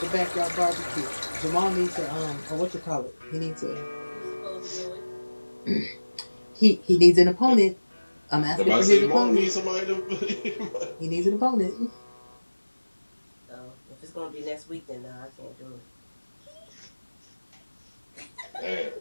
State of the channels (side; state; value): both; inverted; correlation -1.00